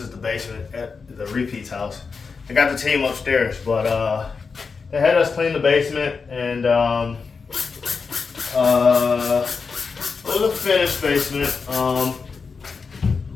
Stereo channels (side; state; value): right; quieter; 5.0 dB